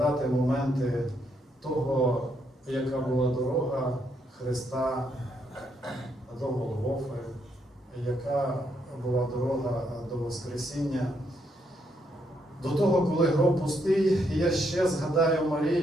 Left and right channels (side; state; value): both; normal; correlation 0.76